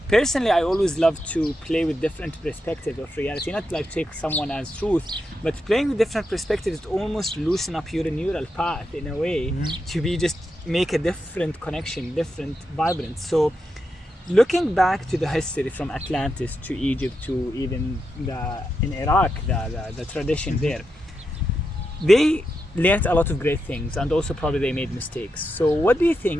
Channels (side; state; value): both; normal; correlation 0.86